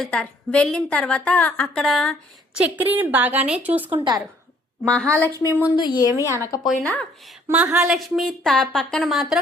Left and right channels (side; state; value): both; normal; correlation 0.61